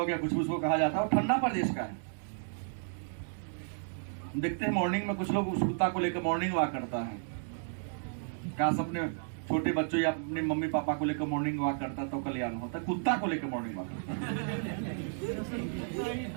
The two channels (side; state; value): left; silent; digital silence